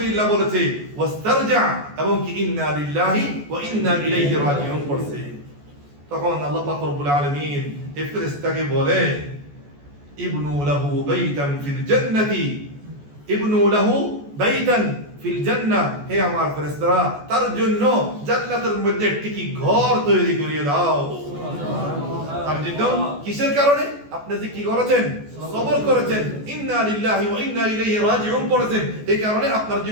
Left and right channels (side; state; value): left; late; 14 ms